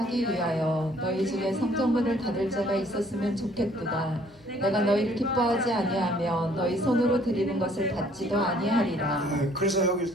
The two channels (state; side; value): normal; both; correlation 0.60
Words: 위하여 너희 중에 성전문을 닫을 자가 있었으면 좋겠도다. 내가 너희를 기뻐하지 아니하며 너희 손으로 드리는 것을 닫지도 아니하리라. 그래서 여기